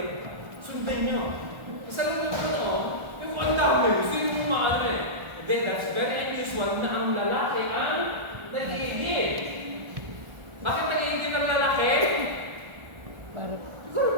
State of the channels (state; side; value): late; left; 1.4 ms